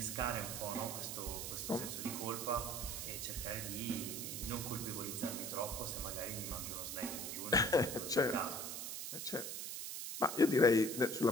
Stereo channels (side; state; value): right; noise; hiss, 5 dB below the sound